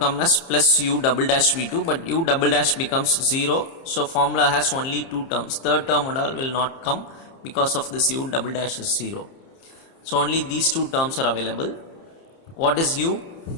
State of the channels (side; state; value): right; late; 30 ms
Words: as plus u double dash v2, but u double dash becomes 0. So formula has only two terms. Third term and all will not come, because of this u double dash is 0. So only these two terms are available. What is u?